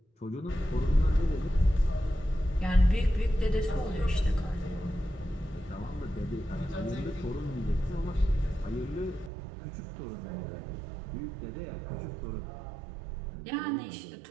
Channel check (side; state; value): left; drops out; at 9.3 s